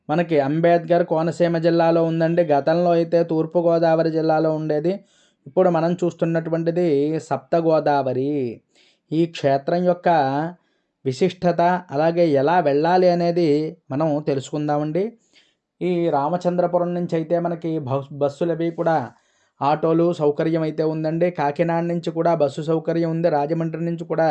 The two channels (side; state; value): both; identical; correlation 1.00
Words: మనకి అంబేద్కర్ కోనసీమ జిల్లాలో ఉందండి. గతంలో అయితే తూర్పుగోదావరి జిల్లాలో ఉండేది. ఇప్పుడు మనం చూస్తున్నటువంటిది సప్త గోదావరి. ఈ క్షేత్రం యొక్క విశిష్టత, అలాగే ఎలా వెళ్ళాలి అనేది మనం తెలుసుకుందామండి. ఈ రామచంద్రపురం నుంచి అయితే మనకి బస్సులు అవి కూడా ఆటోలు సౌకర్యం అయితే ఉందండి. కాకినాడ నుంచి కూడా బస్సు సౌకర్యం ఉంది. రాజమండ్రి నుంచి కూడా